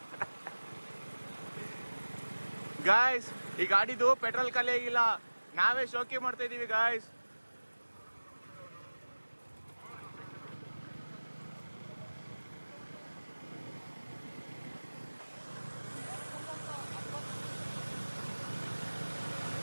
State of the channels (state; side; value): inverted; both; correlation -1.00